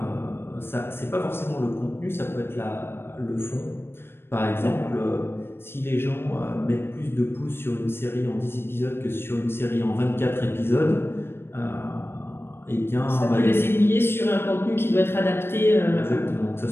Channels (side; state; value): right; late; 0.11 ms